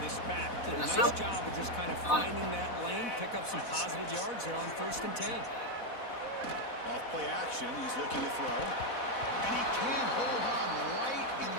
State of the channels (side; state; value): right; late; 4.1 ms